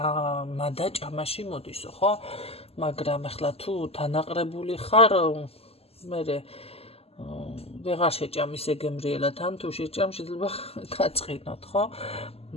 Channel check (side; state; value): right; late; 0.29 ms